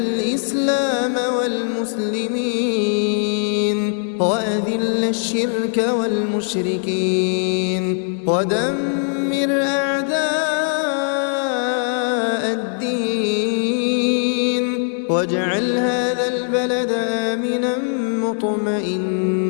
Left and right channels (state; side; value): silent; right; digital silence